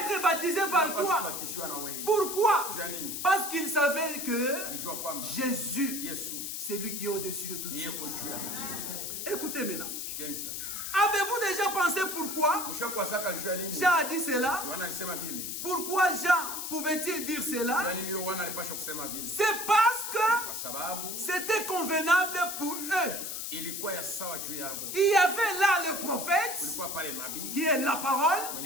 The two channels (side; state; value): left; noise; hiss, 5 dB below the sound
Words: baptisé par toi. Pourquoi? Parce qu'il savait que Jésus, c'est lui qui est au-dessus de tout. Écoutez maintenant. Avez-vous déjà pensé pourquoi Jean a dit cela? Pourquoi Jean pouvait-il dire cela? C'est parce que c'était convenable pour eux. Il y avait là le prophète qui est la parole.